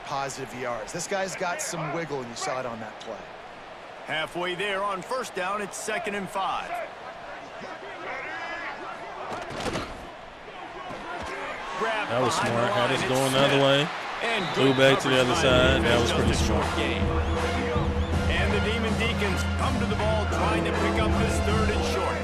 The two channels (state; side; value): identical; both; correlation 1.00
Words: positive yards. This guy's got some wiggle, and you saw it on that play. Halfway there on 1st down, it's 2nd and 5. That was smart. Had us going the other way. Threw back to the other side. That was pretty smart. And the Demon Deacons come to the ball, trying to pick up this 3rd and short.